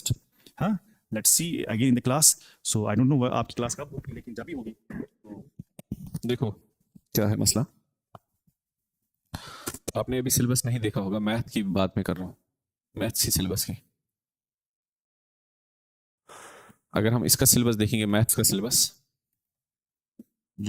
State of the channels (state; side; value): identical; both; correlation 1.00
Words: हाँ let's see again in the class so I don't know आपकी क्लास कब होगी लेकिन जब भी होगी देखो क्या है मसला, आपने अभी सिलेबस नहीं देखा होगा, मैथ की बात मैं कर रहा हूँ, मैथ्स की सिलेबस की। अगर हम इसका सिलेबस देखेंगे, मैथ्स का सिलेबस